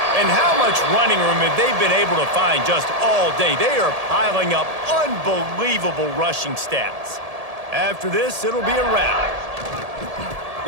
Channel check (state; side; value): late; left; 1.7 ms